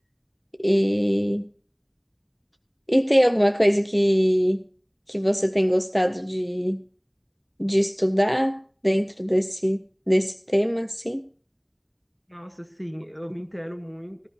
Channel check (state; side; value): identical; both; correlation 1.00